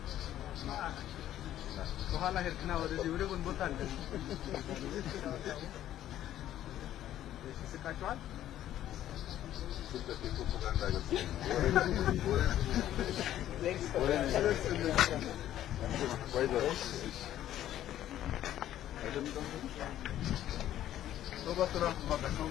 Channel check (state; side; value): quieter; right; 12.3 dB